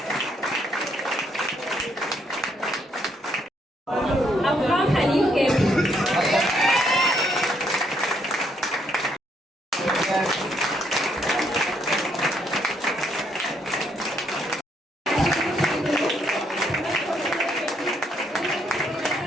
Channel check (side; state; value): both; normal; correlation 0.72